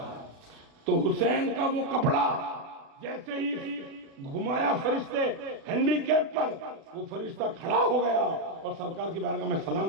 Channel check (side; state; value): left; late; 36 ms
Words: تو حسین کا وہ کپڑا جیسے ہی گھمایا فرشتے ہینڈی کیپ پر، وہ فرشتہ کھڑا ہو گیا اور سرکار کی بارگاہ میں